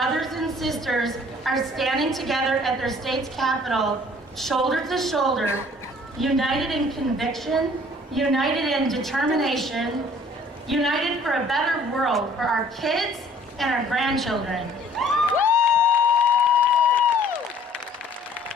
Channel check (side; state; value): both; normal; correlation 0.55